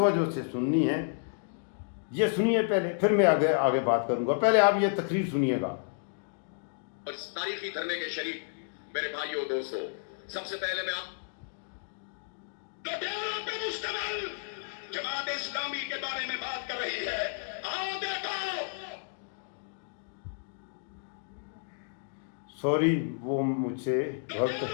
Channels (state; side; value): silent; right; digital silence